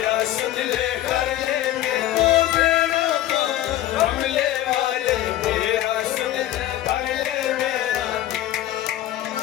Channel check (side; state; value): right; quieter; 13.6 dB